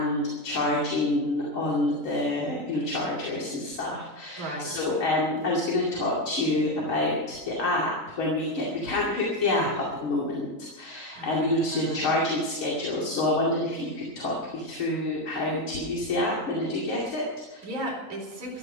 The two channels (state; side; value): late; left; 3.9 ms